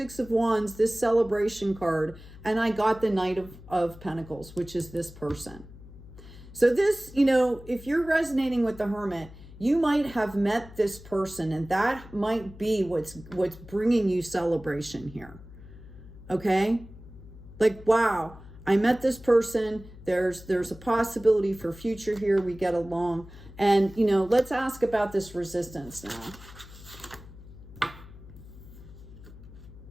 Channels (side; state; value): left; noise; hum, 18 dB below the sound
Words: of Wands, this celebration card, and I got the Knight of Pentacles, which is this person. So this, you know, if you're resonating with the Hermit, you might have met this person, and that might be what's bringing you celebration here. Okay? Like, wow, I met this person. There's a possibility for future here. We get along. And, you know, let's ask about this resistance now.